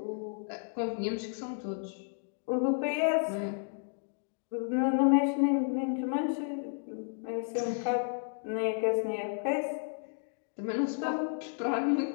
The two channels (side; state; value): right; silent; digital silence